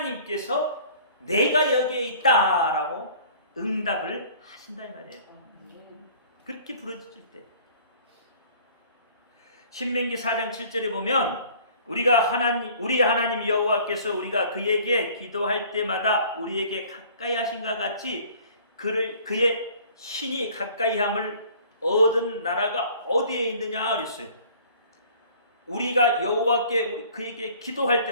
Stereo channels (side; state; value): both; inverted; correlation -0.51